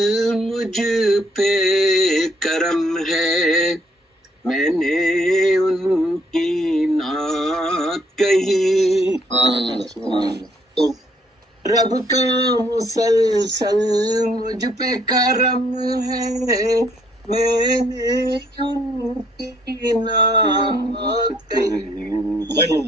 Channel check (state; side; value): normal; both; correlation 0.67